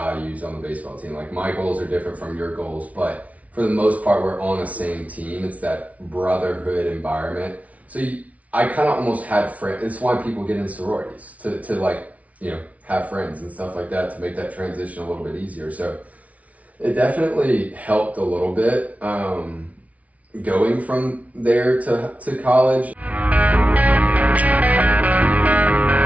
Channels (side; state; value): left; late; 0.068 ms